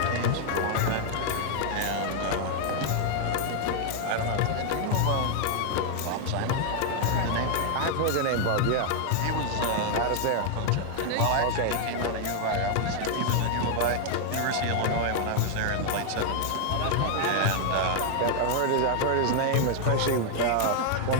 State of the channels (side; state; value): both; different; correlation 0.00